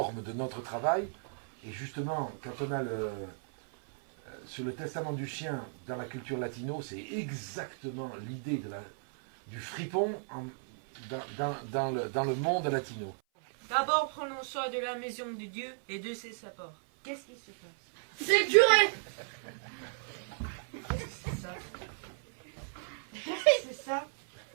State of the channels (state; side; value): silent; left; 55 dB below the other